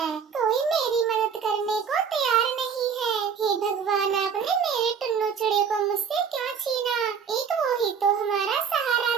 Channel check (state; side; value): quieter; left; 6.8 dB